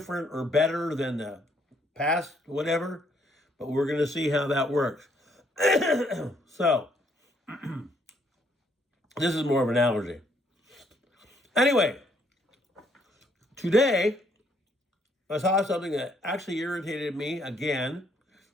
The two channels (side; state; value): both; normal; correlation 0.69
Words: or better than the past, whatever, but we're going to see how that works. So, this is more of an analogy. Anyway, today, I saw something that actually irritated me again